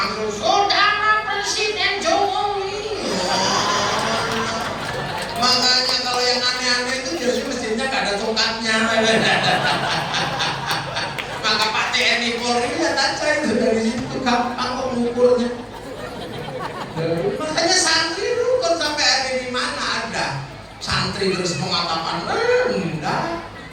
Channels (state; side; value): identical; both; correlation 1.00